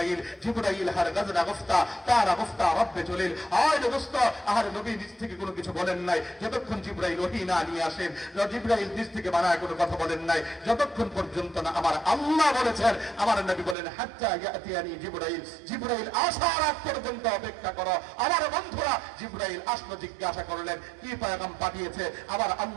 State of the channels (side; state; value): left; drops out; at 13.8 s